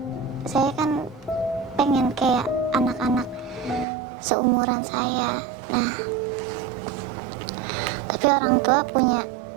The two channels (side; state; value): left; drops out; at 3.9 s